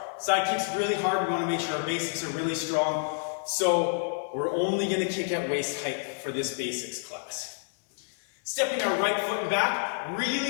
Side kick's really hard. We wanna make sure our basics are really strong. So we're only gonna kick at waist height for this basics class. Stepping our right foot and back,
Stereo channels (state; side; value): silent; right; digital silence